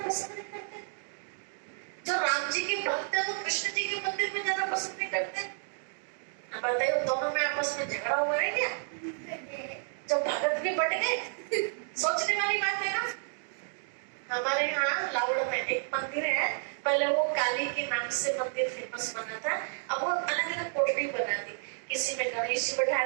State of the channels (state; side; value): silent; left; digital silence